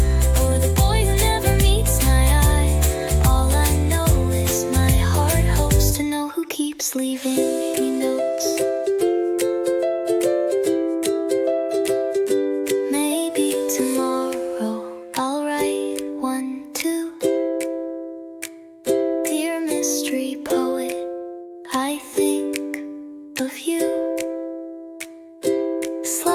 or the boy who never meets my eye? All I know is my heart hopes to know who keeps leaving me notes. Maybe tomorrow I'll write one too. Dear mystery poet, I think of you.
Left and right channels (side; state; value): both; identical; correlation 1.00